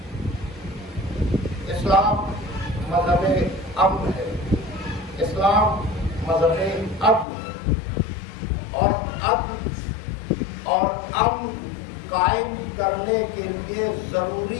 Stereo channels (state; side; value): drops out; right; at 7.2 s